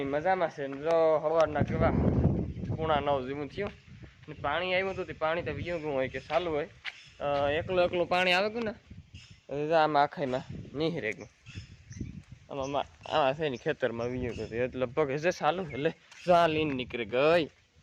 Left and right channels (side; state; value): both; identical; correlation 1.00